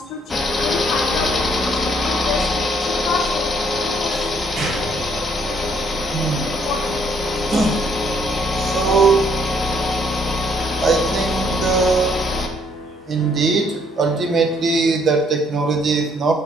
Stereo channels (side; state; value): both; normal; correlation 0.67